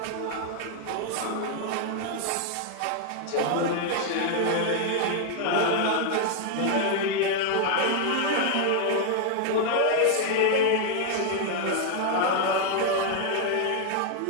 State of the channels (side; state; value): both; different; correlation 0.00